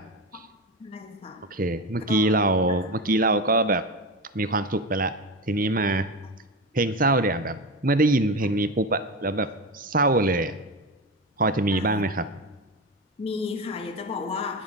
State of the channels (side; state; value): both; normal; correlation 0.21